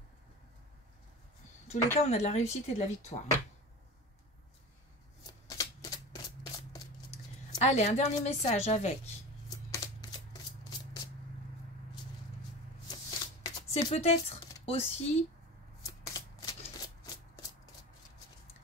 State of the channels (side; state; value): both; normal; correlation 0.32